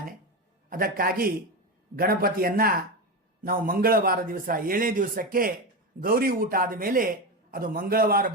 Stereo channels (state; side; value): normal; both; correlation 0.17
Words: ಅದಕ್ಕಾಗಿ ಗಣಪತಿಯನ್ನು ನಾವು ಮಂಗಳವಾರ ದಿವಸ 7ನೇ ದಿವಸಕ್ಕೆ ಗೌರಿ ಊಟ ಆದ ಮೇಲೆ ಅದು ಮಂಗಳವಾರ